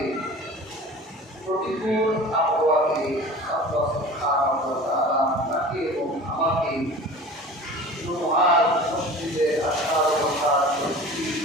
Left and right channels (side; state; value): both; normal; correlation 0.39